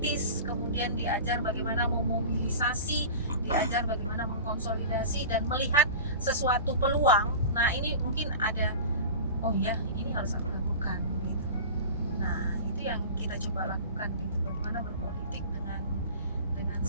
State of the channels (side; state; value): both; inverted; correlation -0.34